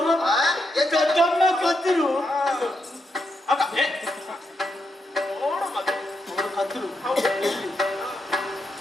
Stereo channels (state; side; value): normal; both; correlation 0.82